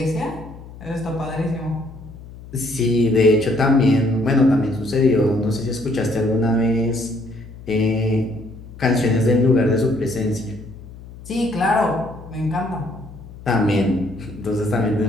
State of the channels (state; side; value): noise; left; hum, 17 dB below the sound